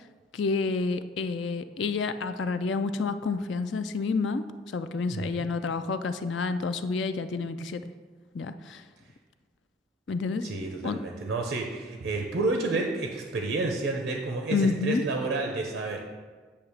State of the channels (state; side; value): normal; both; correlation 0.47